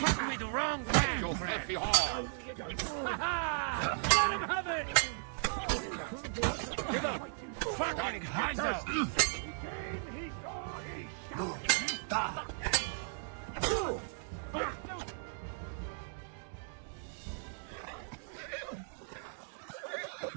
me the wrong way! Your filthy whore! Let him have it! Give up! Fucking hands up!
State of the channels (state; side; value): silent; left; digital silence